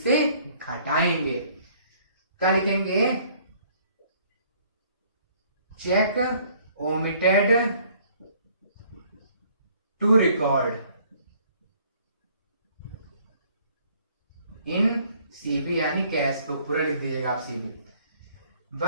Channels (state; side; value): inverted; both; correlation -0.60